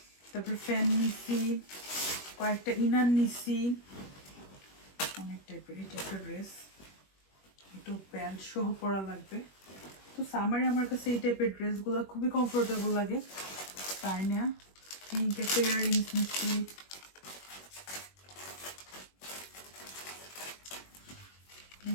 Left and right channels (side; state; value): right; late; 21 ms